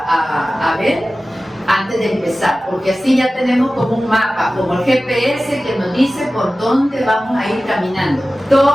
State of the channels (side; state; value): both; normal; correlation 0.96